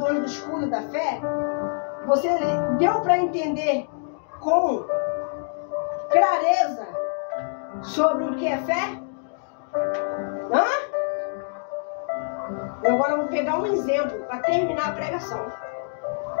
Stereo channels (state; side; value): silent; right; digital silence